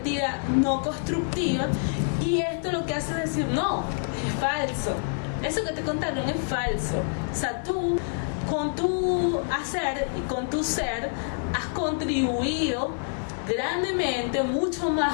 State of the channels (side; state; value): right; silent; 60 dB below the other